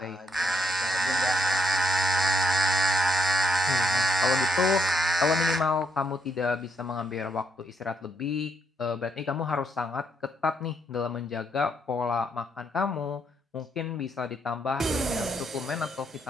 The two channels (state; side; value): normal; both; correlation 0.76